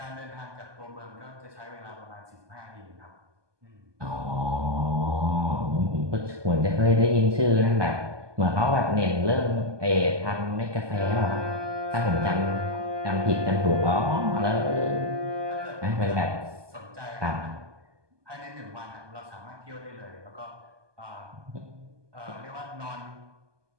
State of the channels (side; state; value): left; late; 1.2 ms